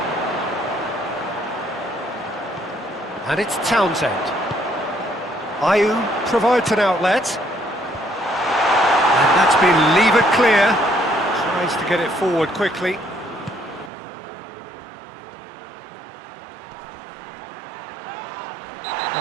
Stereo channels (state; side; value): drops out; left; at 13.9 s